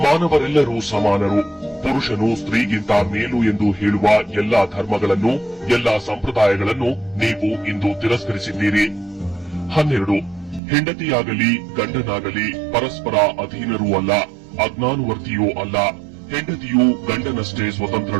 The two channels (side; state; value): left; drops out; at 10.6 s